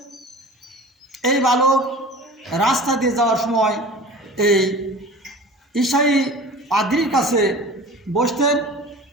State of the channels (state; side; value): normal; both; correlation 0.39